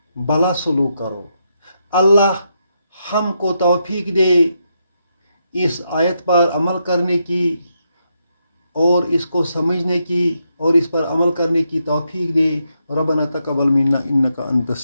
بھلا سلوک کرو۔ اللہ ہم کو توفیق دے اس آیت پر عمل کرنے کی، اور اس کو سمجھنے کی، اور اس پر عمل کرنے کی توفیق دے۔ ربنا تقبل منا انک انت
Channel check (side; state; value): both; inverted; correlation -0.81